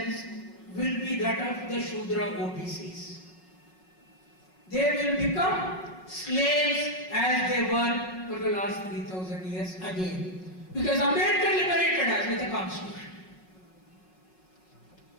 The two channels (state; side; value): late; right; 5.4 ms